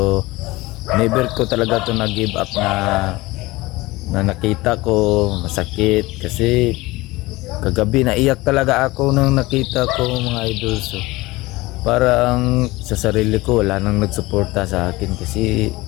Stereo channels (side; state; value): right; quieter; 20.7 dB